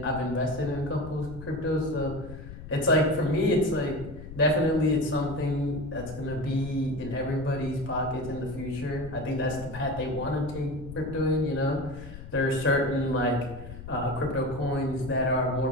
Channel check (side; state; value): left; noise; rumble, 12 dB below the sound